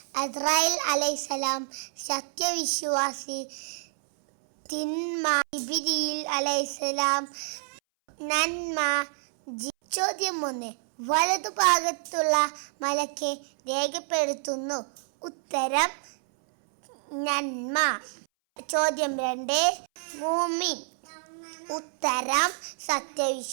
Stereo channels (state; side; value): silent; left; 59 dB below the other